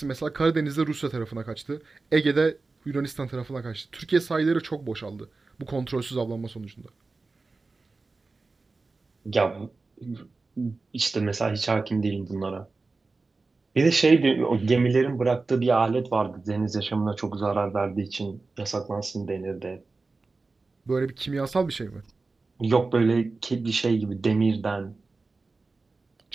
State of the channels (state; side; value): quieter; left; 3.8 dB